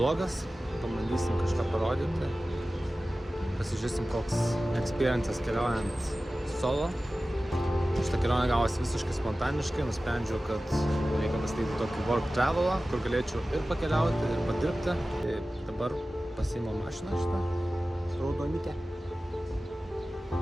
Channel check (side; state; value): both; normal; correlation 0.96